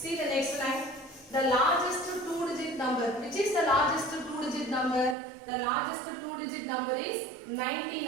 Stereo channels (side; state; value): left; drops out; at 5.2 s